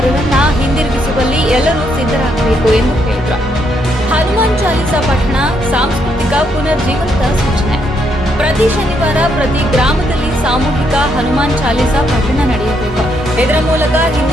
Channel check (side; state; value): both; normal; correlation 0.75